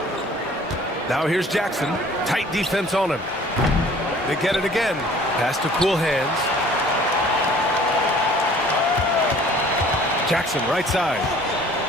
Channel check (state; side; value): normal; both; correlation 0.52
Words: Now here's Jackson. Tight defense on him. They get it again. Pass to cool hands. Jackson right side.